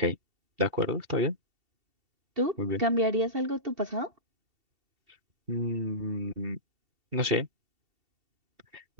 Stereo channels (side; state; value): left; late; 2.7 ms